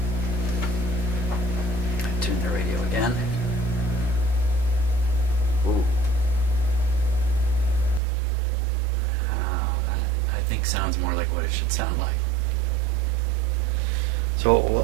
Tune the radio again. Ooh. I think sounds more like what it should sound like. So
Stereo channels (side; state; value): left; drops out; at 8.0 s